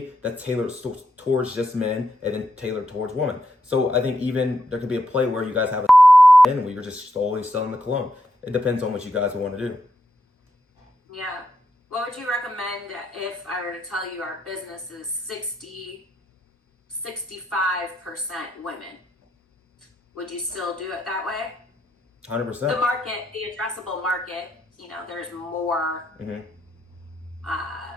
that's tailored towards just men and then tailored towards women. So I think even there could be a play where you guys have a in where you're just always selling the cologne. It depends on what you guys want to do. Yeah. What would you recommend if I were to tell you our business is 65% women? Would you still do it that way? 100%. The market, the addressable market, you know, there's more,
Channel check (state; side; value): normal; both; correlation 0.82